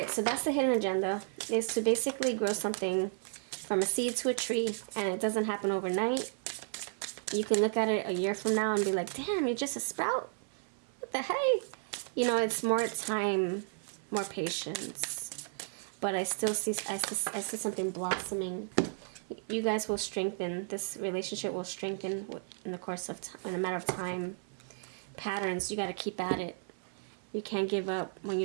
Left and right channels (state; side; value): silent; left; 55 dB below the other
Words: so that's the hidden agenda, is to basically grow something from a seed to a tree, and it doesn't happen overnight. You can look at it a year from now and be like, damn, you're just a sprout? What the hey? You know, it's more time, more patience. But I still see, I see something blossoming. You guys will strengthen. This relationship will strengthen in the course of time, in a matter of time. Patterns, you got to keep at it. You can't give up when you